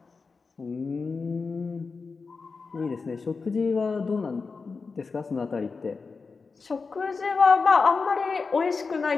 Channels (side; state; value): right; quieter; 4.6 dB